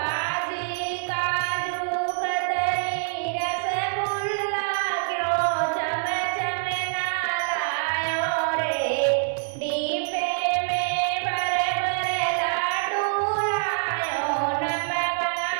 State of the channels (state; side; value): silent; left; digital silence